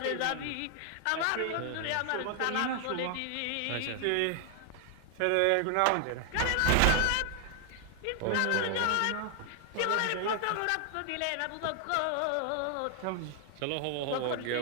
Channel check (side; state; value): both; different; correlation 0.00